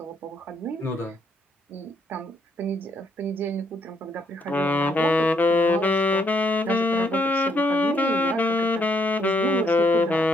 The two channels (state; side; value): normal; both; correlation 0.72